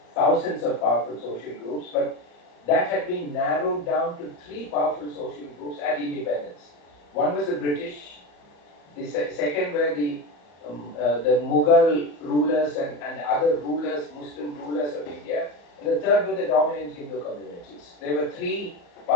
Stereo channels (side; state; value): right; late; 34 ms